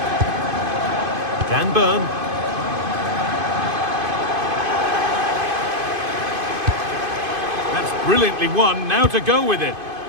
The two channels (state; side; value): late; left; 2.5 ms